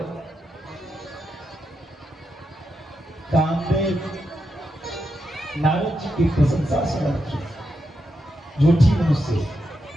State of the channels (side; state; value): both; normal; correlation 0.85